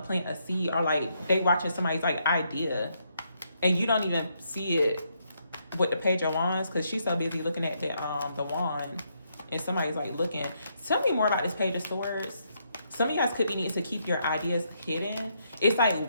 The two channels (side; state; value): both; inverted; correlation -0.76